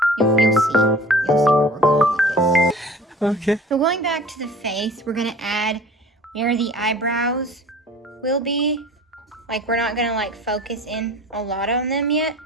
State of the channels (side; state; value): both; normal; correlation 0.44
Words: You'll see where we're going with this. Okay. So going back to the face, we're gonna add where the eyebrows will be. Like we're not gonna like focus in a lot on them yet,